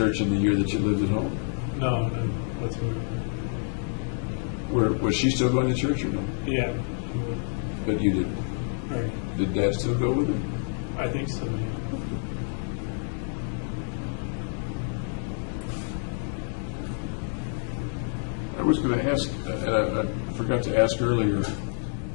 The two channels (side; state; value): right; silent; 55 dB below the other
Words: in the year that you lived at home? No, that's what. Was she still going to church or no? Yeah. But you didn't. Right. Did Dad still go with her? I think so. Yeah. I was going to ask, and I forgot to ask earlier,